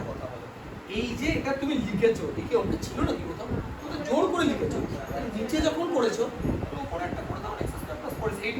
কথা বলো, এই যে এটা তুমি লিখেছো একে অঙ্ক ছিল নাকি কোথাও? তুমি তো জোর করে লিখেছো। নিচে যখন করেছো তো পরেরটা করে দাও x স্কয়ার প্লাস 4x। এই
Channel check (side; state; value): both; identical; correlation 1.00